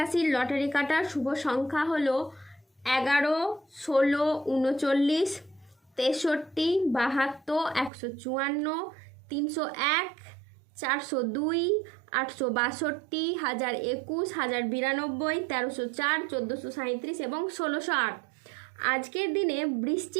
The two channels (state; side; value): drops out; left; at 7.9 s